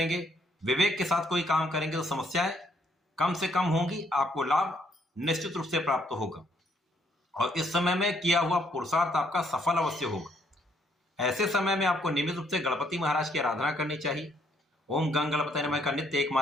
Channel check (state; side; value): normal; both; correlation 0.69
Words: विवेक के साथ कोई काम करेंगे तो समस्याएं कम से कम होंगी, आपको लाभ निश्चित रूप से प्राप्त होगा। और इस समय में किया हुआ पुरुषार्थ आपका सफल अवश्य होगा। ऐसे समय में आपको नियमित रूप से गणपति महाराज की आराधना करनी चाहिए। ओम गंग गणपति नमः का नित्य एक